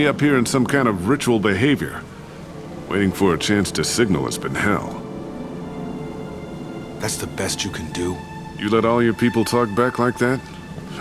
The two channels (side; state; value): both; identical; correlation 1.00